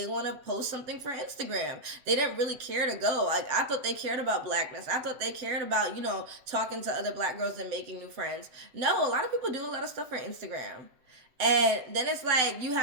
want to post something for Instagram. They didn't really care to go. Like, I thought they cared about blackness. I thought they cared about, talking to other black girls and making new friends. No, a lot of people do a lot of stuff for Instagram. And then it's like you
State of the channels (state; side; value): late; left; 7.8 ms